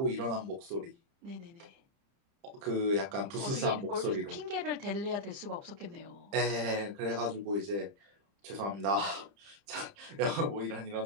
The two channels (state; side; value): late; left; 30 ms